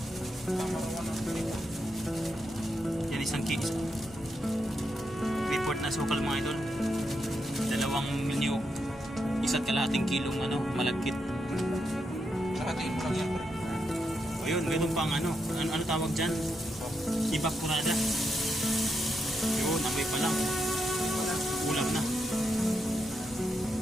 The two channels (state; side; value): normal; both; correlation 0.83